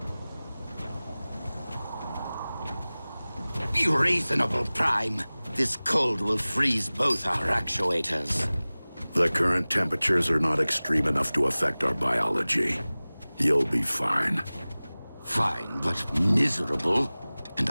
Be reasonable, Prime. This cold will freeze both our actuators. The current temperatures are not extreme enough to affect our biology. You'll be fine. Fine, but miserable? And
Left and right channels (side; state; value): both; inverted; correlation -0.99